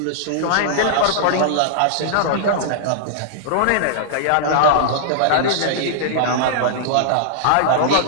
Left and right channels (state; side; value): different; both; correlation -0.01